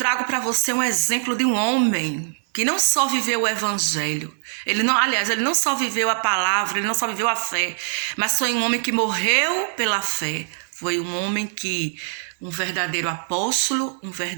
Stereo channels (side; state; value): left; silent; 60 dB below the other